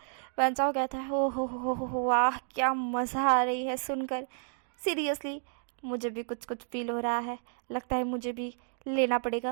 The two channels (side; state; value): left; silent; digital silence